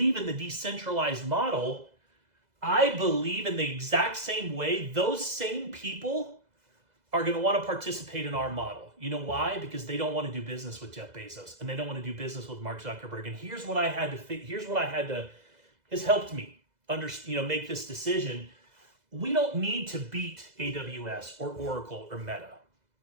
in the decentralized model. I believe in the exact same way. Those same people are going to want to participate in our model. You know why? Because they don't want to do business with Jeff Bezos, and they don't want to do business with Mark Zuckerberg. And here's what has helped me make this decision. We don't need to beat AWS or Oracle or Meta.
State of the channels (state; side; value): late; left; 2.0 ms